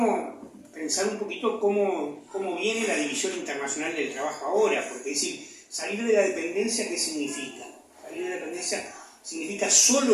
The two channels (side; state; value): both; identical; correlation 1.00